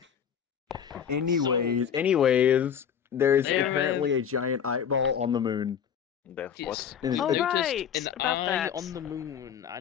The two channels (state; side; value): quieter; right; 8.2 dB